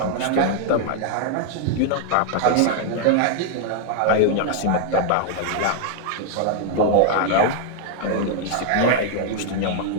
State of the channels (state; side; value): different; both; correlation 0.00